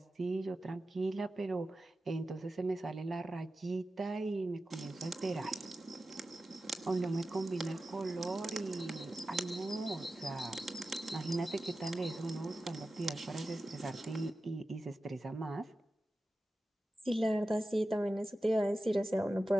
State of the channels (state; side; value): normal; both; correlation 0.94